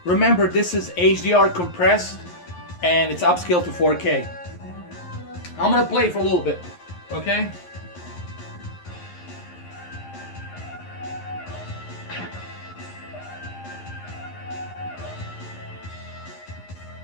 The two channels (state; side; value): late; right; 11 ms